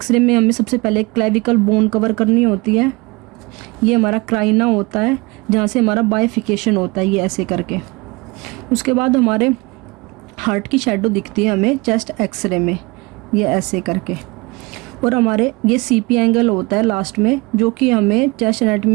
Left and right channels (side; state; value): left; quieter; 25.0 dB